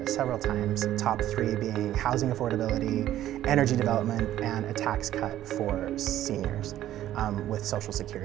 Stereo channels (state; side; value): quieter; left; 12.9 dB